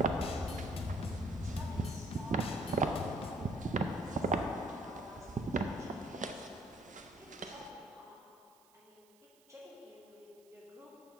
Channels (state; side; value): noise; right; hiss, 29 dB below the sound